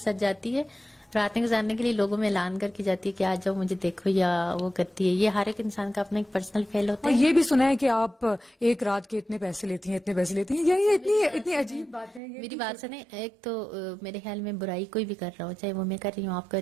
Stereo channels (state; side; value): drops out; left; at 12.2 s